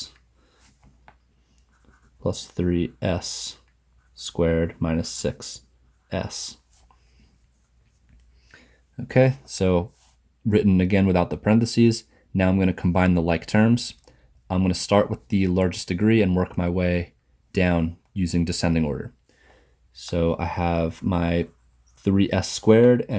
Plus 3S squared minus 6S. Okay, so written again without the parentheses. Now I'm going to combine the like terms. I'm going to start with the largest degree and work my way down using descending order. So I have my 3s squared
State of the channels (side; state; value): both; identical; correlation 1.00